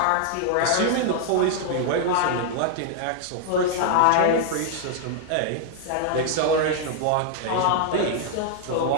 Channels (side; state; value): both; different; correlation 0.00